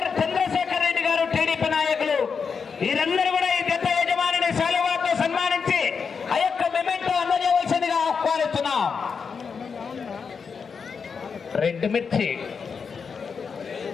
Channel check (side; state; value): right; quieter; 5.8 dB